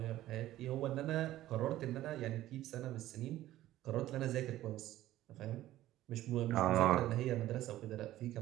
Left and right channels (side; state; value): left; quieter; 14.6 dB